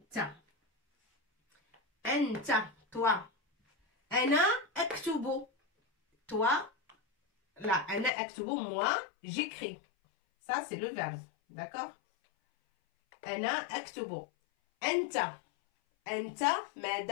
Anta, toi. Ana aktubu. Toi, là, ana aktubu, moi, j'écris. Ça, c'est le verbe. D'accord? أنا أكتب. أنت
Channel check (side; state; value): right; drops out; at 8.1 s